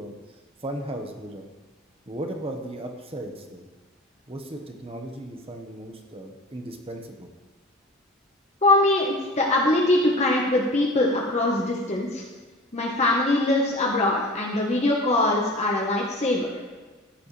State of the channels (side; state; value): both; normal; correlation 0.38